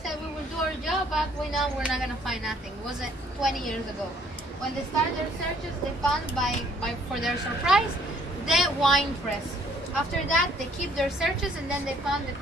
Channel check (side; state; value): both; normal; correlation 0.61